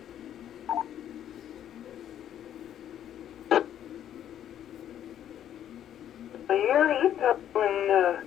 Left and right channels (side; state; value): right; quieter; 10.6 dB